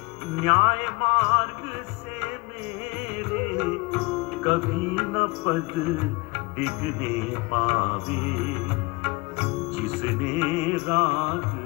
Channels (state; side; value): quieter; right; 25.3 dB